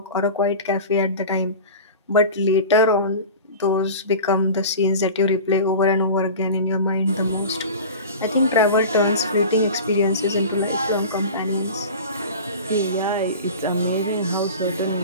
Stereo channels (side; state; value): both; inverted; correlation -0.34